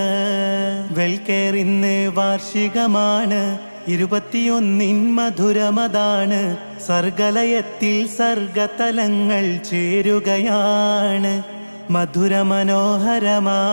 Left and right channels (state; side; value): inverted; both; correlation -1.00